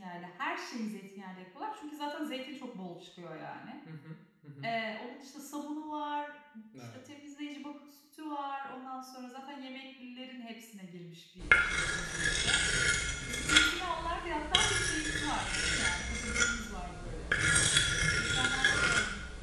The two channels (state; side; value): identical; both; correlation 1.00